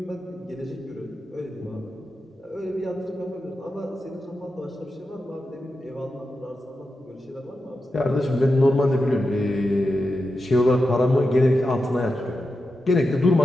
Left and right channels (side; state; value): both; normal; correlation 0.89